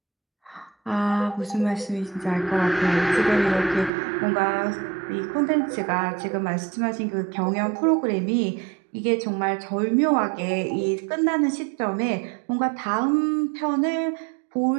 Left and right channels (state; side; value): drops out; left; at 3.9 s